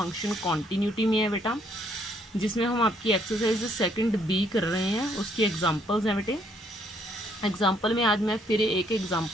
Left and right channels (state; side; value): normal; both; correlation 0.68